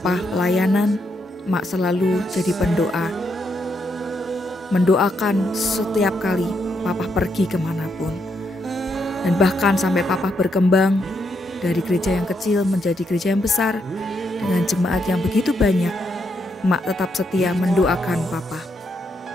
pelayanan, emak selalu jadi pendoa. Mendoakan setiap kali papa pergi kemanapun. Dan bahkan sampai papa berkembang dari gereja yang kecil menjadi gereja yang besar dengan jemaat yang begitu banyak, emak tetap setia mendoakan papa.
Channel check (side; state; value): both; normal; correlation 0.78